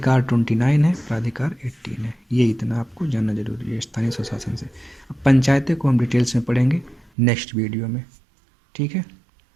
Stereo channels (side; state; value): left; drops out; at 7.1 s